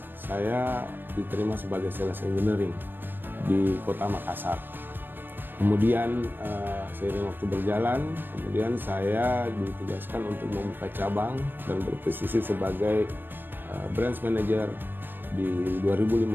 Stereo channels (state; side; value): late; left; 0.095 ms